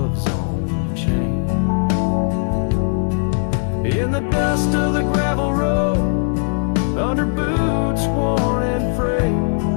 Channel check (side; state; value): right; silent; digital silence